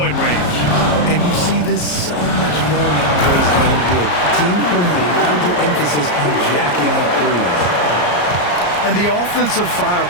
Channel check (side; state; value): right; late; 34 ms